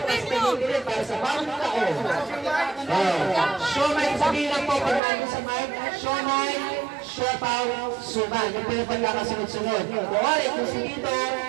para sa bawat taon. Siomai, sabihin lang po pag namin sa mic. Siomai, siopaw, suman. Yung pinapagkakasunod-sunod. Kuwari, kung si Tito.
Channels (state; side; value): drops out; left; at 5.0 s